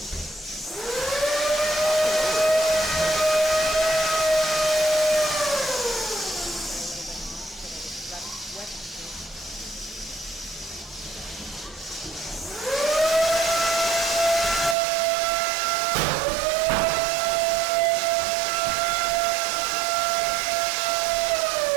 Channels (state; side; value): drops out; left; at 14.8 s